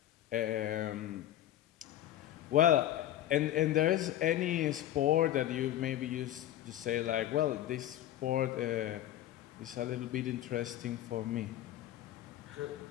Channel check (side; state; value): right; quieter; 12.7 dB